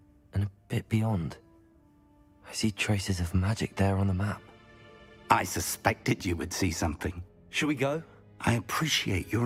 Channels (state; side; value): identical; both; correlation 1.00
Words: and a bit beyond. I see traces of magic there on the map. I suspected you would see something. Shall we go? I appreciate